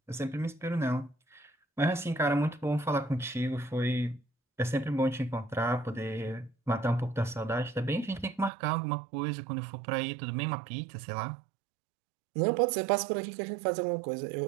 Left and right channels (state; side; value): drops out; left; at 8.5 s